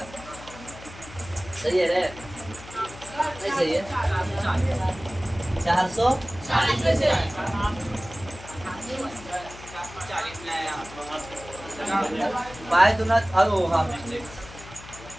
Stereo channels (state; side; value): noise; left; hum, 16 dB below the sound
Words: सही है रे, नहीं सही है, 400 बाय दूना, अरे हाँ मिस्टेक,